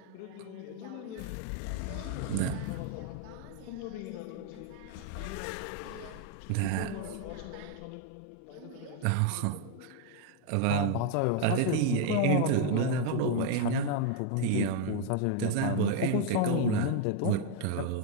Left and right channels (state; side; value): different; both; correlation 0.01